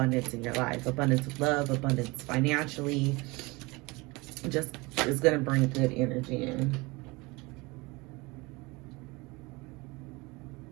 in your life. Abundance of love, abundance financially. Just is going to bring good energy in.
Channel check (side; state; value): left; quieter; 24.4 dB